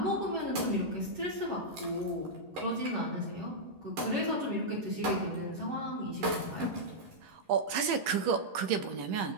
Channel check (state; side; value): late; left; 11 ms